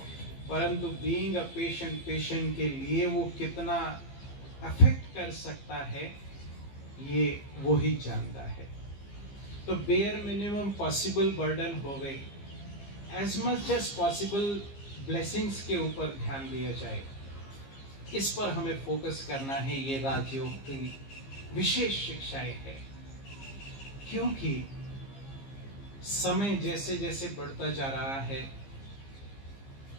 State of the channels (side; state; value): right; late; 15 ms